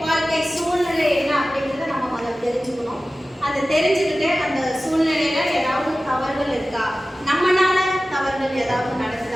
வாழ்க்கை சூழ்நிலை என்ன அப்படிங்கிறத நம்ம முதல் தெரிஞ்சுக்கணும். அதை தெரிஞ்சுக்கிட்டு அந்த சூழ்நிலையில ஏதாவது தவறுகள் இருக்கா, நம்மளால தவறுகள் ஏதாவது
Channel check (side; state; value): both; normal; correlation 0.96